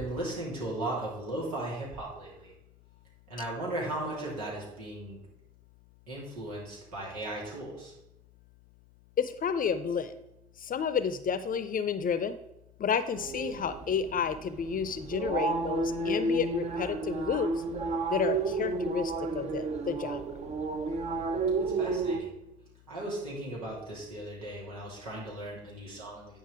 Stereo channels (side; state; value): left; noise; hum, 26 dB below the sound